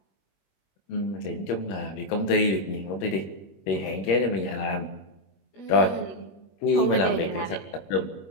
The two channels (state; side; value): late; right; 21 ms